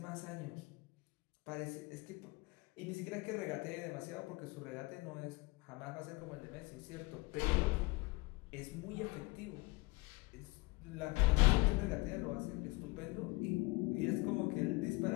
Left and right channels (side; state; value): right; quieter; 24.1 dB